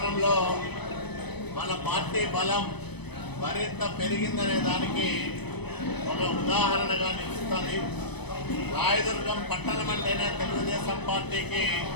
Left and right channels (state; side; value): late; right; 0.99 ms